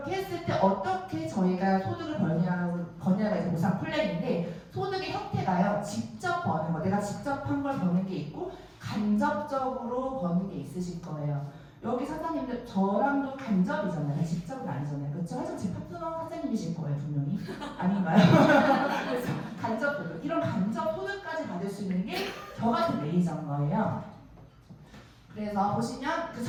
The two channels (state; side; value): identical; both; correlation 1.00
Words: 했을 때 어떻게 저희가 소득을 버냐가 이제 보상 플랜인데 소득의 형태가요. 직접 버는 거, 내가 직접 한 걸 버는 게 있고 간접적으로 버는 게 있으실 거예요. 여기 사장님들 저랑도 간접이잖아요. 직접은 아니잖아요. 그렇죠? 하지만 제 파트너 사장님이실 거예요. 분명히. 아닌가요? 그래서 간접, 이런 간접 소득까지 받을 수 있는 게 저 같은 매니저인 거예요. 그래서 보시면 그